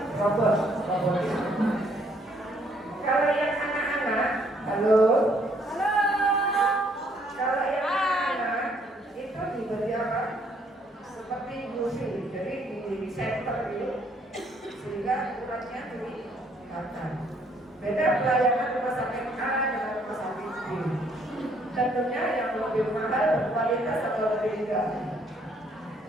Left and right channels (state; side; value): normal; both; correlation 0.66